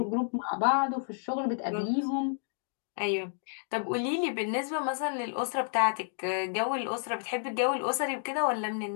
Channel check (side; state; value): right; silent; digital silence